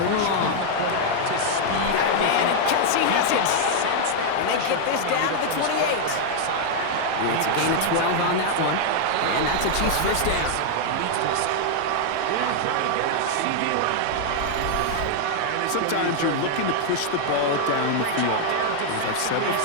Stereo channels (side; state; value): both; different; correlation 0.00